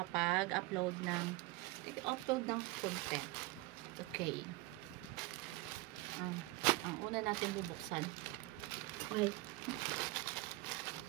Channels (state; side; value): quieter; left; 20.3 dB